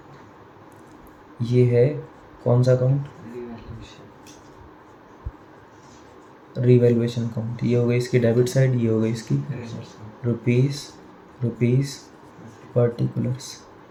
ये है कौन सा अकाउंट? Revaluation account. ये हो गई इसकी डेबिट साइड, ये हो गई इसकी रुपीस पर्टिकुलर्स।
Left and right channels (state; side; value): identical; both; correlation 1.00